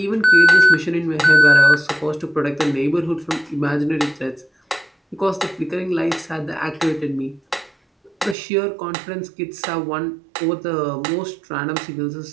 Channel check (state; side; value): drops out; left; at 8.3 s